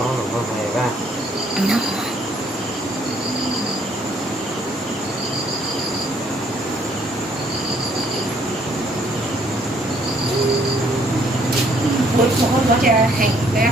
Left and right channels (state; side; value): normal; both; correlation 0.65